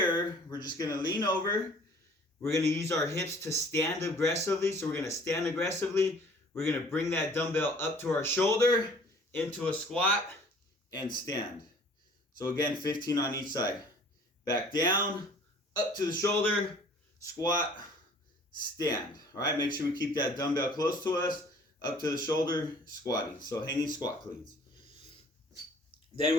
we're just gonna lean over. We're gonna use our hips to stand aggressively. So we're gonna stand aggressively. We're gonna bring that dumbbell up to our shoulder, into a squat, and stand. So again, 15 on each side. Back down, up to the shoulder, squat, stand. All right, make sure we keep that dumbbell close to us, up to the shoulder, squatting. So hanging squat cleans. Then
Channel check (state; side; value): normal; both; correlation 0.53